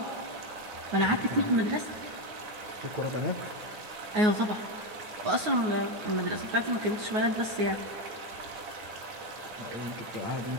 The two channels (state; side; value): late; left; 9.4 ms